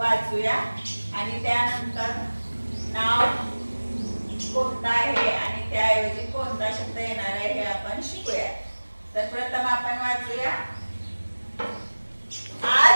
आणि त्यानंतर नाव कोणतं आहे आणि त्याऐवजी कोणता शब्द येणार आहे हे आपण शिकूया. तर प्रथम आपण वाचूया.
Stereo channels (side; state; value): both; inverted; correlation -1.00